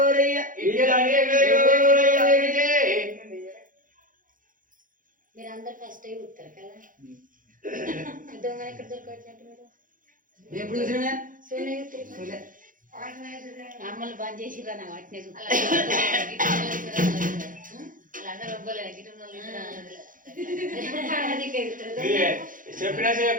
మీరందరూ ఫస్ట్ అయి ఉంటారు కదా దొంగ ఎక్కడ దొరకవచ్చినట్టు మీరు ఎప్పుడు చూసినా అమ్మలు బంద్ చేసిరా నా వాటిని వాళ్ళందరూ ఒప్పుకోలేదు గిట్ట చెప్పినా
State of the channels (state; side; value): late; left; 0.39 ms